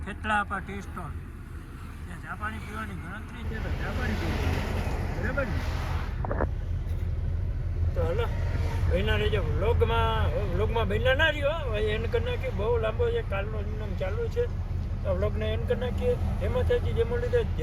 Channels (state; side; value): identical; both; correlation 1.00